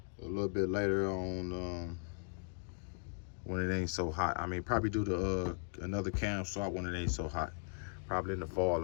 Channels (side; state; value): right; silent; 53 dB below the other